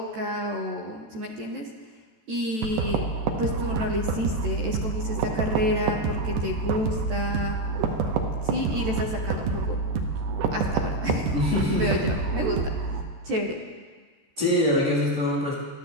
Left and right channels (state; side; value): late; left; 14 ms